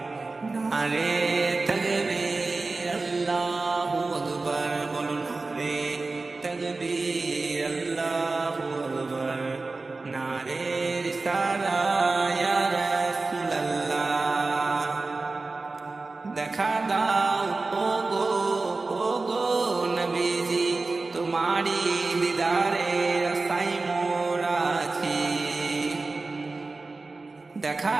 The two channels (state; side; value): quieter; left; 3.6 dB